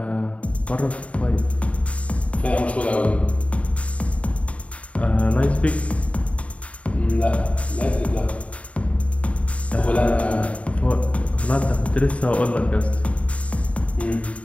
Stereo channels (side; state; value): right; late; 0.065 ms